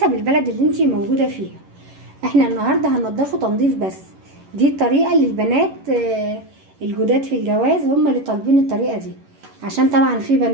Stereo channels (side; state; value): left; late; 11 ms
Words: البلد اللي انتي موجودة فيها. احنا النهاردة هننضفه تنظيف بس. دي الطريقة اللي البنات الجداد في الجواز هم اللي طالبين الطريقة دي، عشان طبعا في